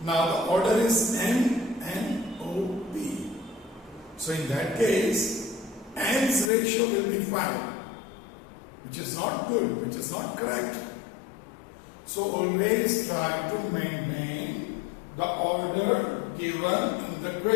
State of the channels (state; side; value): drops out; right; at 6.5 s